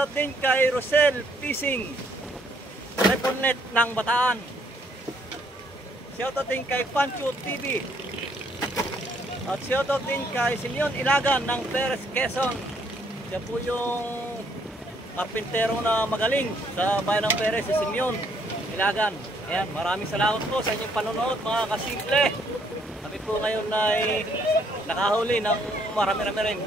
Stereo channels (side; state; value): both; normal; correlation 0.68